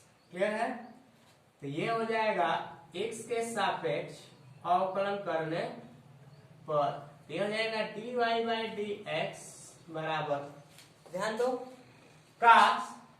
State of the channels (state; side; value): identical; both; correlation 1.00